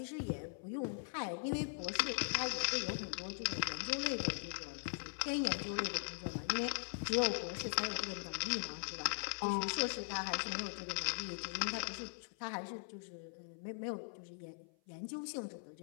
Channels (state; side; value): silent; right; 51 dB below the other